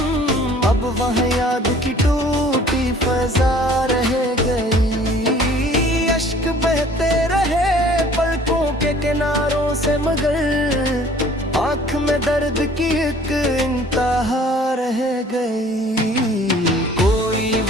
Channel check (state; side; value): normal; both; correlation 0.52